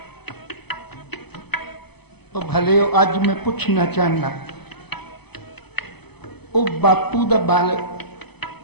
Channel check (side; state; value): right; late; 0.98 ms